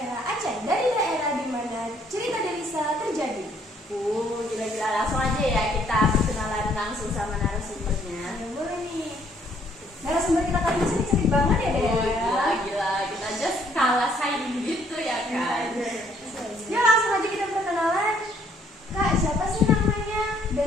Aceh, dari daerah di mana cerita Delisa terjadi. Gila-gila, langsung aja ya kita perkenalan langsung sama narasumbernya. Ya, boleh nih. Narasumber kita kali ini cantik banget ya Dea. Gila, kita just kalah saing gitu ya kan. Ya langsung aja kita perkenalan. Kak, siapa sih namanya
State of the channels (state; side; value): normal; both; correlation 0.66